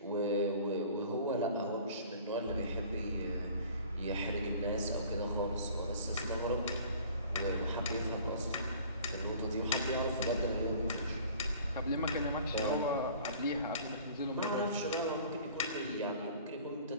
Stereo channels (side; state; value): both; inverted; correlation -0.48